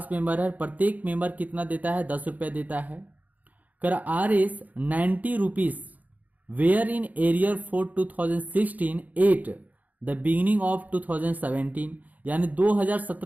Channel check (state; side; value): late; left; 0.078 ms